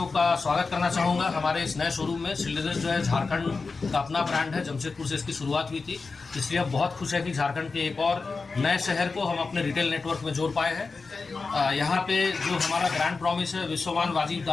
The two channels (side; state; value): right; quieter; 4.3 dB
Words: का स्वागत करना चाहूँगा हमारे इस नए शोरूम में। शिल्डर्स जो है झारखंड का अपना ब्रांड है, जमशेदपुर से इसकी शुरुआत हुई थी, इसलिए हम बहुत खुश है कि झारखंड के एक और नए शहर को हम अपने रिटेल नेटवर्क में जोड़ पाए हैं। यहाँ पे जो हमारा ब्रांड प्रॉमिस है विश्वमान वाजिब